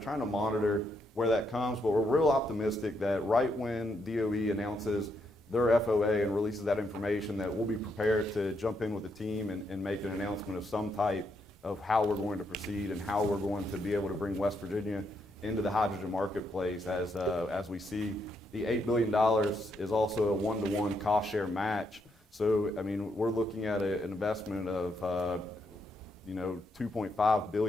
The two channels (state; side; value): normal; both; correlation 0.78